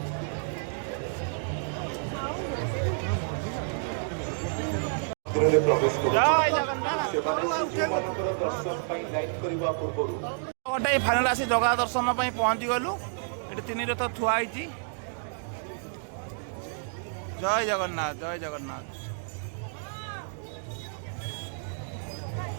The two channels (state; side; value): silent; left; digital silence